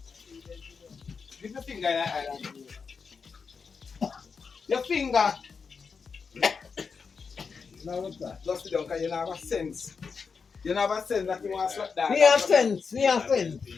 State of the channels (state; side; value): quieter; right; 5.4 dB